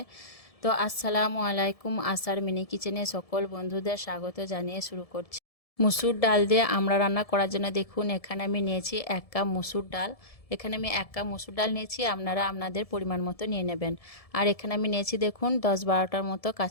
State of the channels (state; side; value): late; right; 1.7 ms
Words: তো আসসালামু আলাইকুম, আসার মিনি কিচেনে সকল বন্ধুদের স্বাগত জানিয়ে শুরু করছি। মসুর ডাল দিয়ে আমড়া রান্না করার জন্য দেখুন এখানে আমি নিয়েছি 1 কাপ মসুর ডাল। এখানে আমি 1 কাপ মসুর ডাল নিয়েছি, আপনারা আপনাদের পরিমাণ মতো নিয়ে নেবেন। আর এখানে আমি নিয়েছি দেখুন 10-12টার মতো